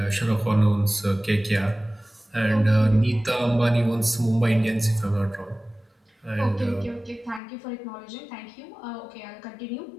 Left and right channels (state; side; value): drops out; right; at 7.4 s